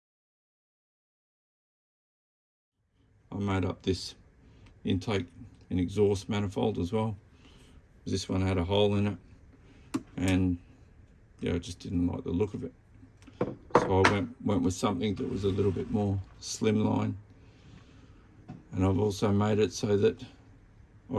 made up this intake and exhaust manifold as well. This one had a hole in it, and yeah, I just didn't like the look of it. So I went with something that was a little bit more slimline, and I've also made it so that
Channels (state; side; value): identical; both; correlation 1.00